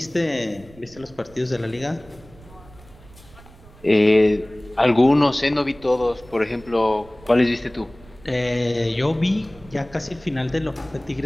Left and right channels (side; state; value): right; noise; rumble, 23 dB below the sound